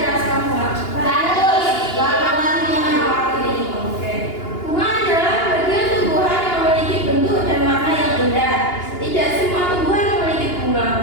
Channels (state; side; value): late; right; 2.8 ms